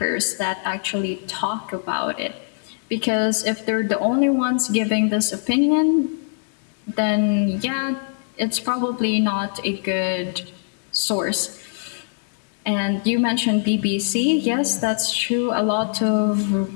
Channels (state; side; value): silent; right; digital silence